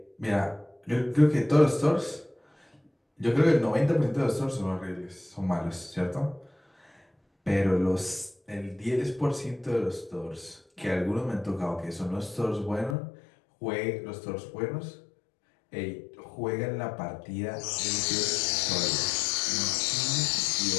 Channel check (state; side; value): drops out; right; at 13.0 s